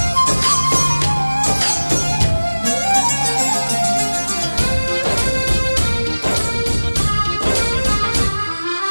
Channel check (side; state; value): both; inverted; correlation -1.00